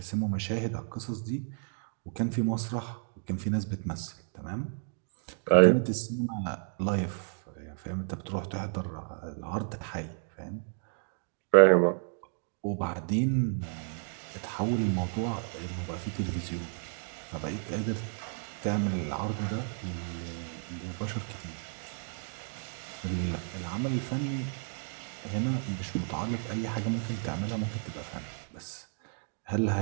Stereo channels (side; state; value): left; silent; 56 dB below the other